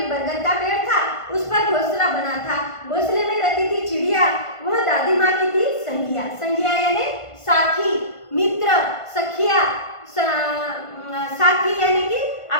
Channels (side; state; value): right; late; 1.5 ms